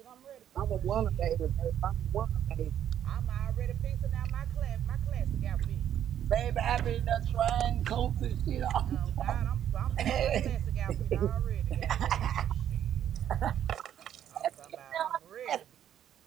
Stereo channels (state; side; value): quieter; left; 10.3 dB